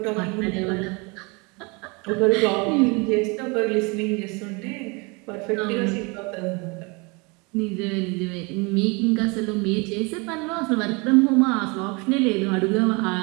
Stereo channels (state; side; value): quieter; left; 29.0 dB